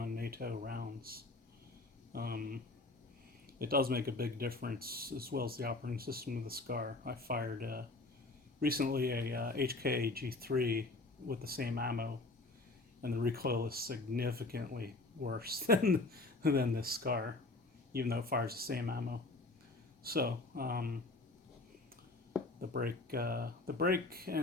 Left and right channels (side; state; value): right; quieter; 3.1 dB